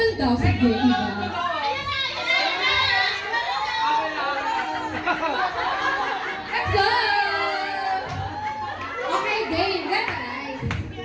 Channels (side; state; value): both; identical; correlation 1.00